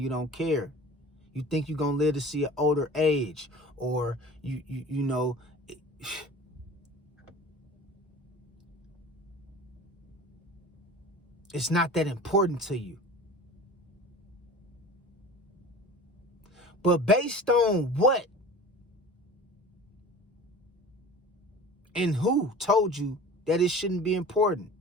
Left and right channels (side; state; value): both; normal; correlation 0.39